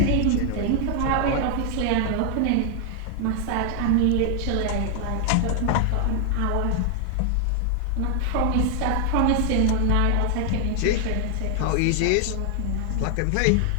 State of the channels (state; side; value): different; both; correlation 0.00